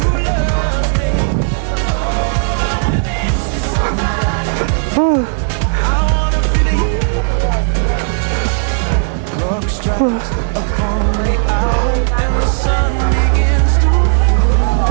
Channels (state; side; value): silent; left; digital silence